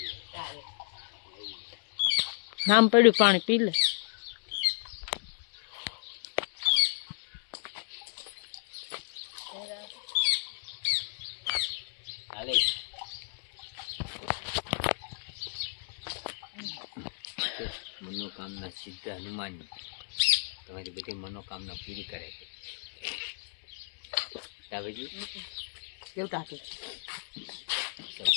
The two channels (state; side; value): silent; right; digital silence